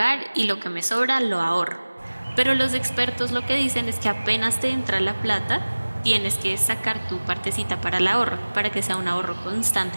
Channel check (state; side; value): inverted; both; correlation -1.00